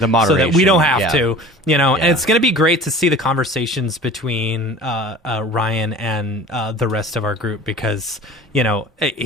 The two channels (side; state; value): both; normal; correlation 0.41